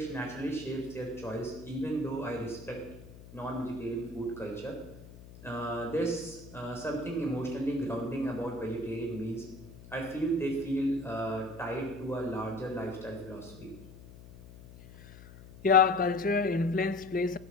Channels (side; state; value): left; noise; hum, 17 dB below the sound